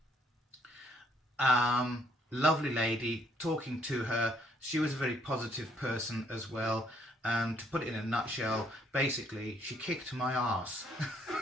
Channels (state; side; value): normal; both; correlation 0.67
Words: Lovely lady, talking to her. She was a very positive person as well. To put it in a nutshell, basically, she kicked my ass.